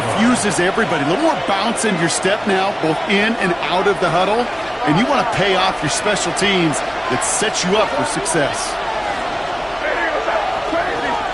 everybody. A little more bounce in your step now, both in and out of the huddle. And you want to pay off your special teams that sets you up for success.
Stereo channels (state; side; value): identical; both; correlation 1.00